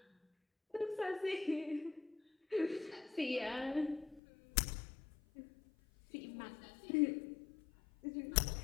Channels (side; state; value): right; drops out; at 4.2 s